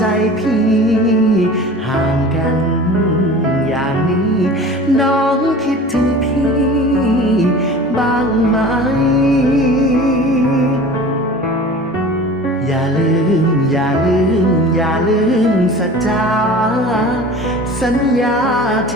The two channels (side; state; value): both; normal; correlation 0.39